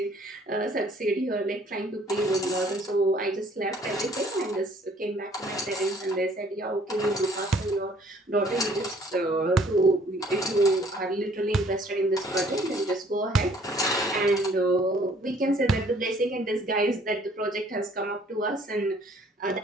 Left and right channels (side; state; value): both; normal; correlation 0.59